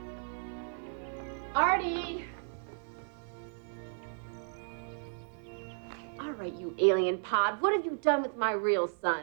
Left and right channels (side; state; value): left; silent; 55 dB below the other